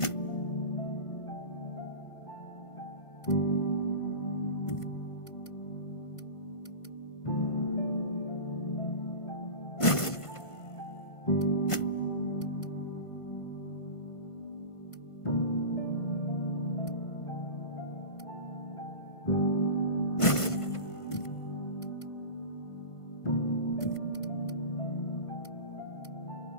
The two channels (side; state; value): right; late; 1.5 ms